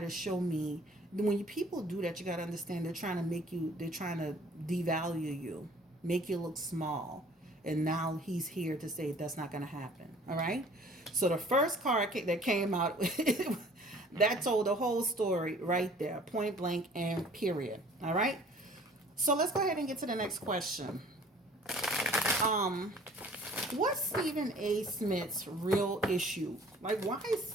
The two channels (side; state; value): both; normal; correlation 0.52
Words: show me." When people do that, you got to understand they're trying to they're trying to devalue you, make you look small. And now he's here to say that's not going to happen. All right. So the first card that came out, that told the whole story right there, point blank and period. All right. So let's go ahead and get to the next question. What's Stephen A. Smith's real issue? Like, why